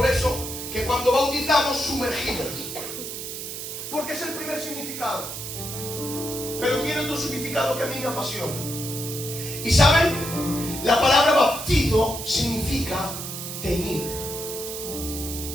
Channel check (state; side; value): noise; right; hiss, 7 dB below the sound